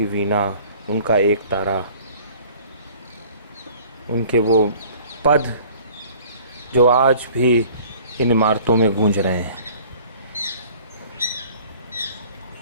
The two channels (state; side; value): inverted; both; correlation -0.51